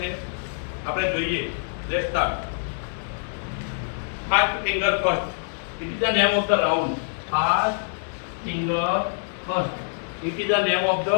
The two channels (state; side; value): silent; right; digital silence